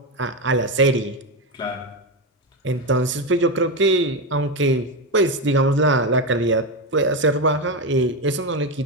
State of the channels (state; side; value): normal; both; correlation 0.12